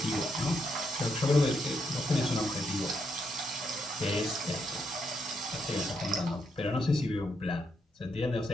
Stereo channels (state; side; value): normal; both; correlation 0.79